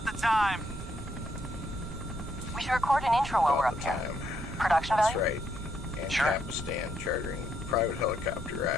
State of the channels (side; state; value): right; noise; rumble, 10 dB below the sound